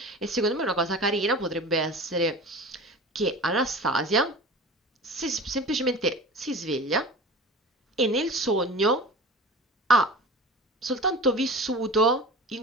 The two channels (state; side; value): normal; both; correlation 0.35